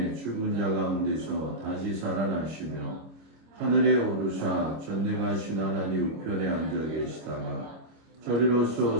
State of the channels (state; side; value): late; left; 25 ms